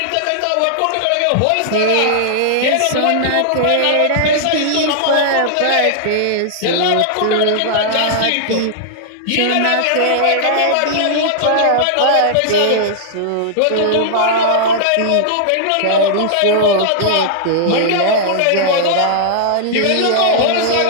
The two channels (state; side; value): different; both; correlation -0.01